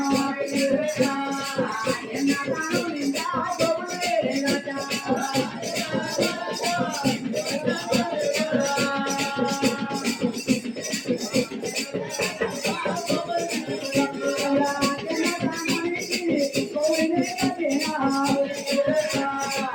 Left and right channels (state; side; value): identical; both; correlation 1.00